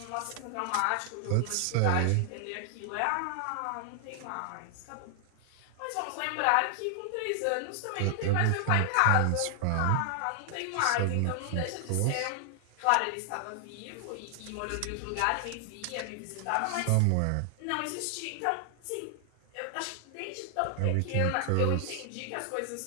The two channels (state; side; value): different; both; correlation 0.00